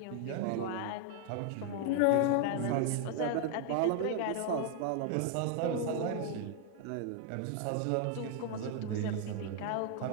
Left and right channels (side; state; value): both; different; correlation 0.00